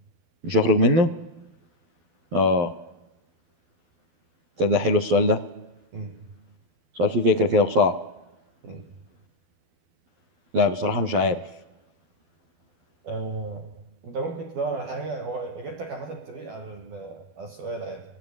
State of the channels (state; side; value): late; left; 12 ms